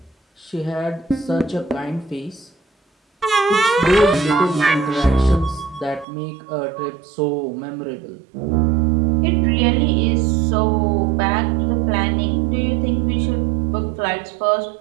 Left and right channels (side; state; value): left; drops out; at 6.1 s